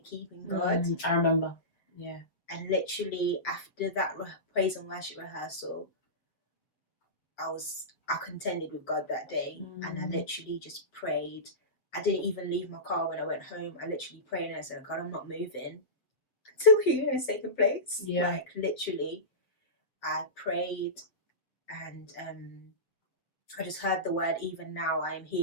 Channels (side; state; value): right; late; 7.5 ms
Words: keeping God. I remember. Yeah. And literally after that praise and worship rehearsal, I contended with God that day, and I literally just prayed. I didn't even leave my car when I went home. I literally prayed and I said, God, I'm not moving until healing has taken place. Yeah. Like literally, I prayed, and I just heard the word, even now I am